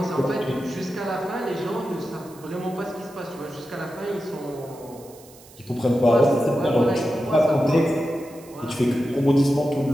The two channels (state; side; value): noise; right; hiss, 23 dB below the sound